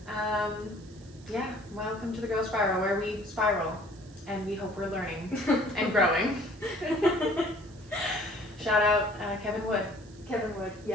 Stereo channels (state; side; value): noise; right; hiss, 25 dB below the sound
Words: Welcome to the Growth Spiral, where we spiral and we hope we're learning and growing. Shout out Kevin Wood. Kevin Wood,